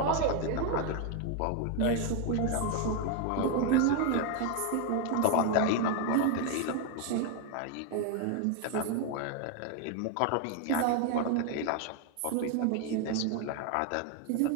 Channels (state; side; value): different; both; correlation 0.01